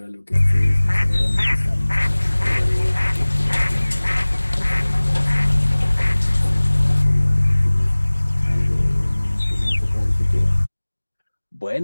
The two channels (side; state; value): both; inverted; correlation -1.00